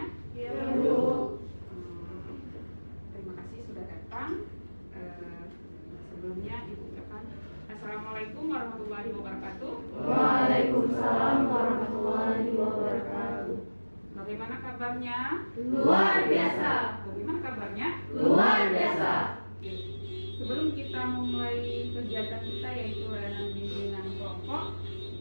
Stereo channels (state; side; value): inverted; both; correlation -1.00